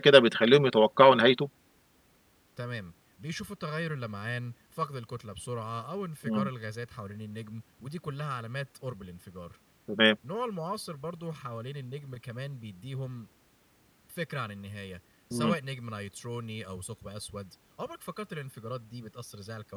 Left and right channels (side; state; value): both; identical; correlation 1.00